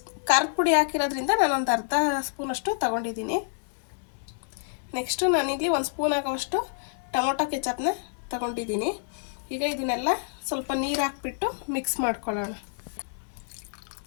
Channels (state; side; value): silent; right; digital silence